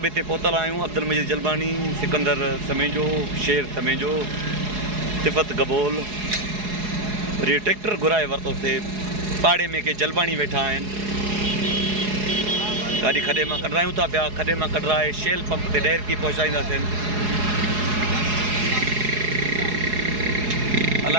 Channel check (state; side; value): late; left; 4.8 ms